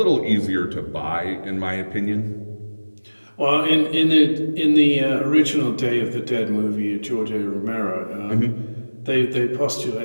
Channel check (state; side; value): inverted; both; correlation -1.00